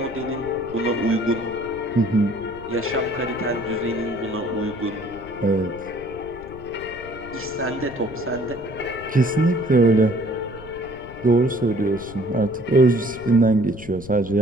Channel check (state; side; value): noise; left; rumble, 16 dB below the sound